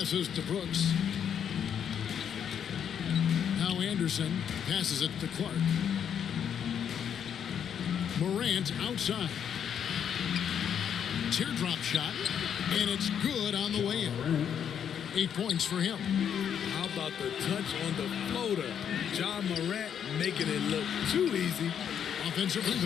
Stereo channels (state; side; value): quieter; right; 8.4 dB